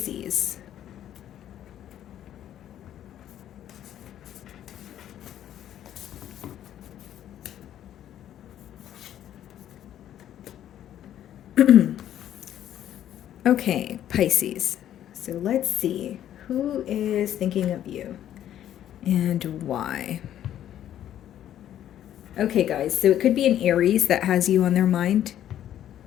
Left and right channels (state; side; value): quieter; right; 11.2 dB